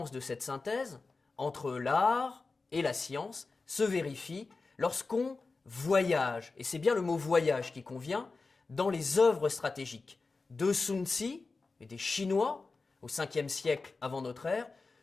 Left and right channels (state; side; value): quieter; right; 3.9 dB